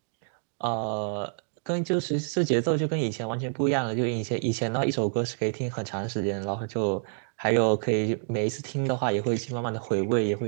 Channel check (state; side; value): silent; left; digital silence